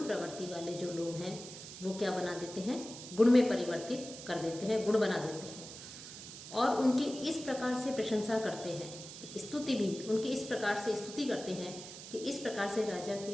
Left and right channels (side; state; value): right; noise; hiss, 12 dB below the sound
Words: प्रवृत्ति वाले जो लोग हैं वो क्या बना देते हैं, गुण में परिवर्तित कर देते हैं, गुण बना देते हैं। और उनकी इस प्रकार से प्रशंसा करते हैं, स्तुति भी उनकी इस प्रकार से स्तुति करते हैं कि इस प्रकार से राजा